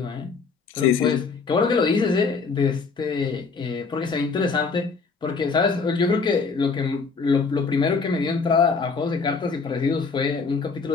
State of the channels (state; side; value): quieter; right; 4.7 dB